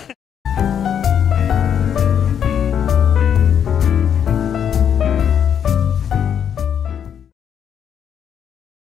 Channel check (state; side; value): quieter; right; 8.5 dB